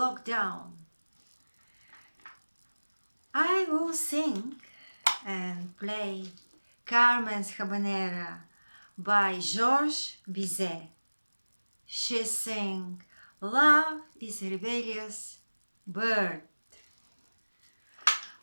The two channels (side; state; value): both; inverted; correlation -1.00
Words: I will sing and play Carmen's Habanera by Georges Bizet. She sang "Love is a Rebellious Bird."